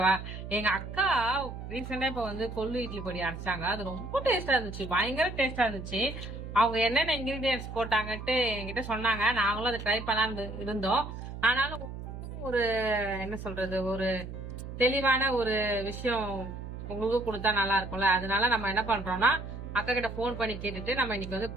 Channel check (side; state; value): right; noise; hum, 9 dB below the sound